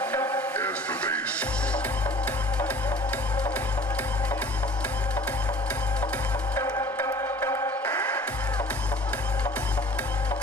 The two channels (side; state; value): both; normal; correlation 0.48